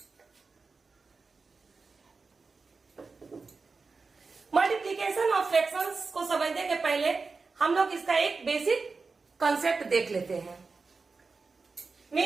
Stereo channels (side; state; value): left; quieter; 4.3 dB